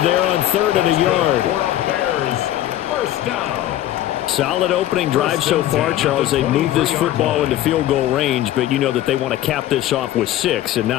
there on 3rd and a yard. Bears first down. Solid opening drive so far, Charles. They moved this football into field goal range, but you know that they want to cap this off with 6 and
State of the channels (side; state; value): right; quieter; 13.4 dB